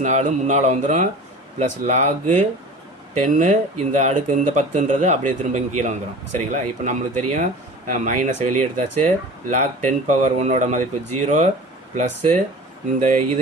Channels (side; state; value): both; normal; correlation 0.38